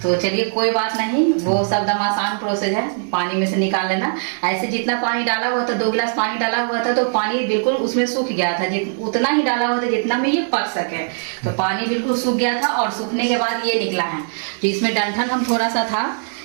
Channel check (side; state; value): left; silent; digital silence